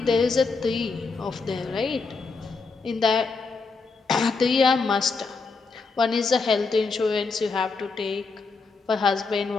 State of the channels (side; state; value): right; quieter; 4.4 dB